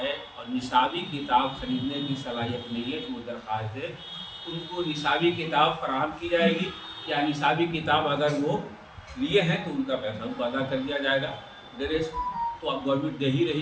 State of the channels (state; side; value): identical; both; correlation 1.00